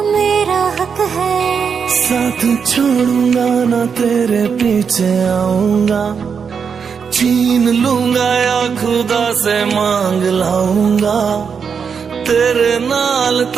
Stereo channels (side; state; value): left; quieter; 6.3 dB